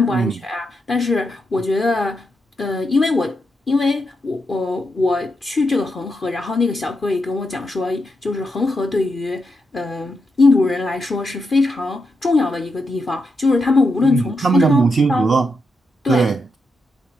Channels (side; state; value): both; normal; correlation 0.84